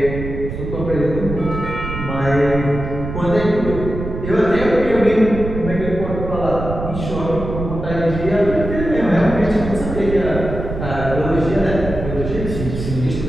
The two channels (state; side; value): noise; right; rumble, 7 dB below the sound